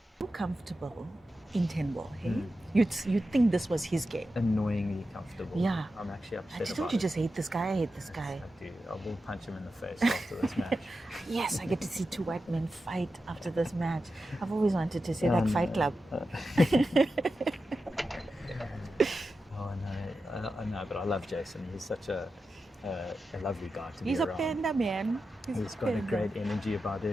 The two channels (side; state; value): both; normal; correlation 0.91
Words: so comfortable in 10-ball, hey? You'd think this was his game. Annoyingly comfortable. Yeah. I'm actually upset Don't about you it. just hate this guy? I hate this guy. I do. I will punch him in the face after this match. Yes, I get to see two white men fight after this match. I've always wanted to see that Fight Club. Oh, no. I know, but I love Jason. He's such a lovely guy to He's be a around. panda, man. He's got a great energy about